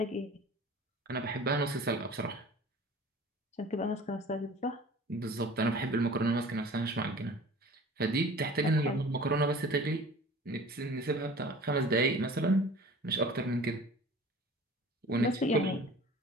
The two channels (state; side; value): normal; both; correlation 0.43